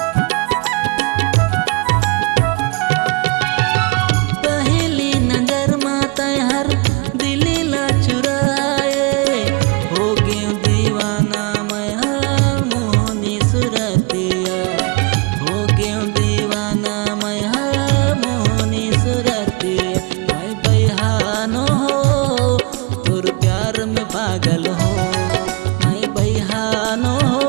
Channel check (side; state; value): left; quieter; 29.4 dB